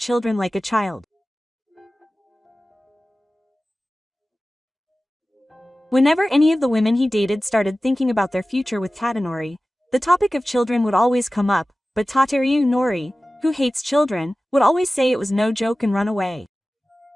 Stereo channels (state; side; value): normal; both; correlation 0.96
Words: like a child. Whenever any of the women he dated started thinking about their future with Tadanori, the topic of children would always come up, but Tateru Nori, who hates children, would always say it was no joke and run away.